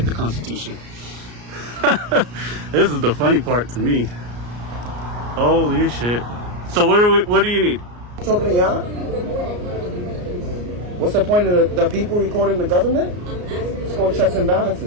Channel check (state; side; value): late; left; 34 ms